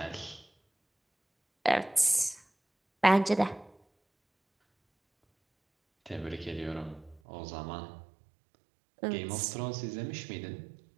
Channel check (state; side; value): drops out; left; at 7.2 s